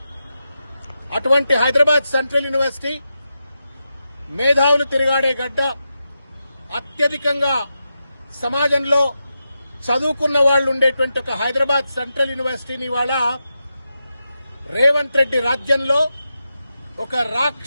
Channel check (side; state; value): both; inverted; correlation -0.88